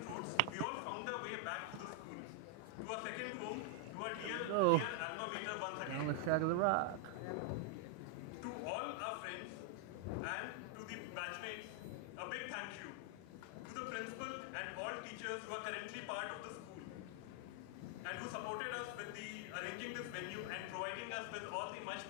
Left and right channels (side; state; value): both; different; correlation 0.00